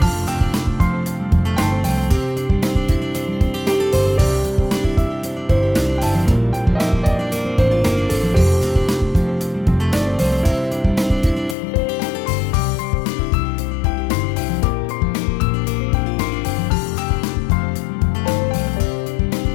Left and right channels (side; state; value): right; drops out; at 11.6 s